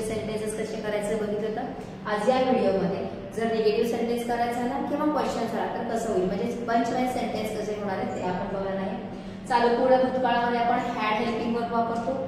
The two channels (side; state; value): both; identical; correlation 1.00